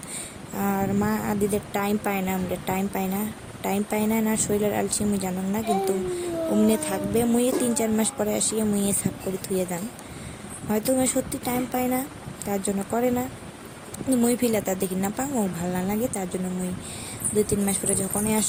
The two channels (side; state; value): both; identical; correlation 1.00